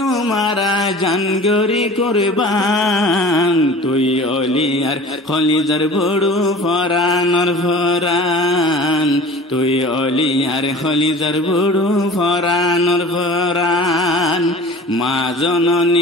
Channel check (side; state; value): both; normal; correlation 0.41